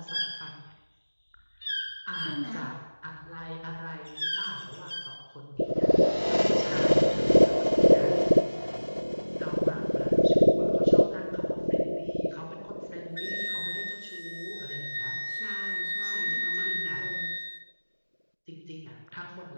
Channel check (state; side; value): inverted; both; correlation -1.00